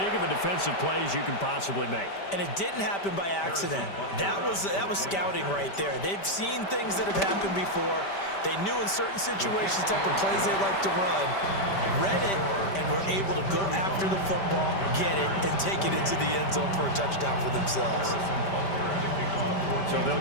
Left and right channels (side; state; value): right; late; 5.1 ms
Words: of a defensive play as you can possibly make. And it didn't happen by accident. That was scouting right there. They've seen things that have happened before. They knew in certain situations the type of plays they like to run, read it, and were able to go after the football, get it, and take it into the end zone for a touchdown for themselves. So